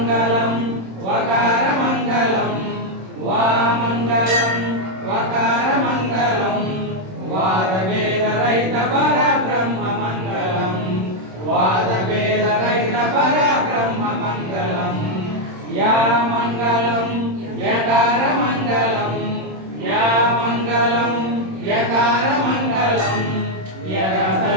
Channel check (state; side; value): late; left; 27 ms